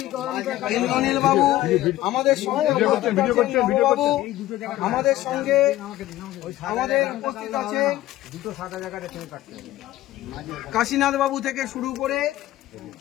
ইন্দ্রনীল বাবু, আমাদের সঙ্গে আমাদের উপস্থিত আছে কাশীনাথ বাবু থেকে শুরু করে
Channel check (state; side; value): quieter; right; 15.2 dB